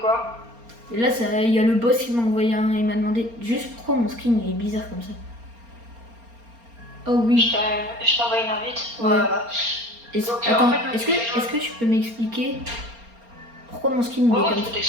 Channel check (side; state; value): left; late; 4.3 ms